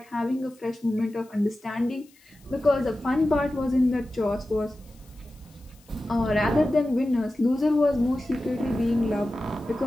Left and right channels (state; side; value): noise; left; hiss, 29 dB below the sound